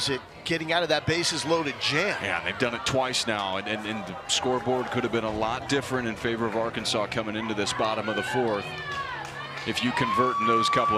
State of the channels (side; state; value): both; identical; correlation 1.00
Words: it getting out of that bases loaded jam? Yeah, they've done it twice now, and the scoreboard could have been a lot different in favor of Arkansas coming into this bottom of the fourth if you convert in those couple